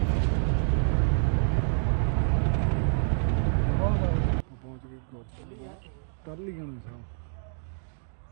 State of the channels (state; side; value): silent; left; digital silence